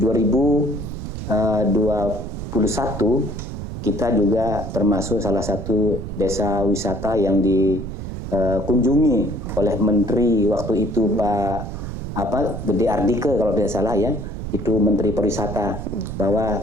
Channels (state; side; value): noise; right; rumble, 7 dB below the sound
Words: 2021 kita juga termasuk salah satu desa wisata yang dikunjungi oleh Menteri waktu itu Pak Gede Ardike kalau tidak salah ya, itu Menteri Pariwisata, bahwa